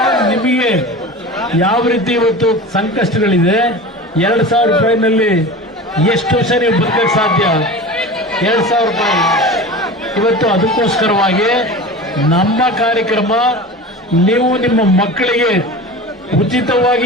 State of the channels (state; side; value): normal; both; correlation 0.33